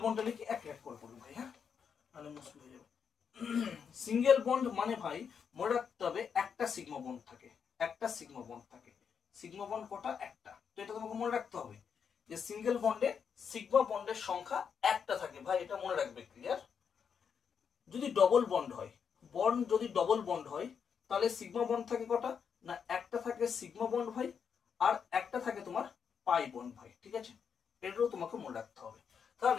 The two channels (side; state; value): right; quieter; 6.9 dB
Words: বন্ডটা লিখে এক এক করে পড়বো ভাই, হ্যাঁ মানে মুশকিল হয়ে যাবে। সিঙ্গেল বন্ড মানে ভাই মনে রাখতে হবে একটা সিগমা বন্ড থাকে, একটা সিগমা বন্ড থাকে। সিগমা বন্ড কটা? একটা। তো এটা তোমাকে মনে রাখতে হবে যে সিঙ্গেল বন্ডে সিগমা বন্ডের সংখ্যা একটা থাকে ভাই, এটা মনে রাখবে, ক্লিয়ার? যদি ডবল বন্ড হয়, বন্ড যদি ডবল বন্ড হয় তাহলে সিগমা বন্ড থাকে কটা? না একটা থাকে সিগমা বন্ড ভাই, আর একটা থাকে তোমার পাই বন্ড ভাই, ঠিক আছে? এটাও তোমাকে মনে রাখতে হবে।